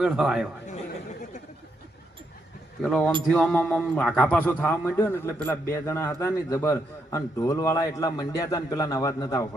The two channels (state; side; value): normal; both; correlation 0.79